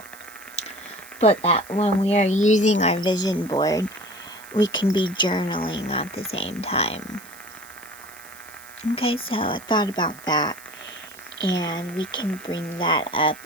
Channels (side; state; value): right; noise; hiss, 20 dB below the sound